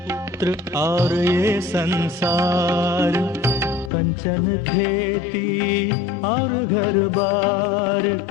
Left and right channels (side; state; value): right; drops out; at 3.9 s